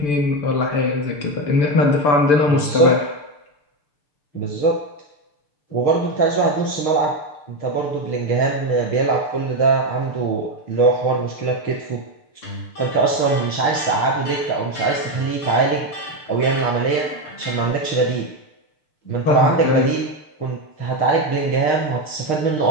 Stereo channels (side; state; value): right; late; 6.8 ms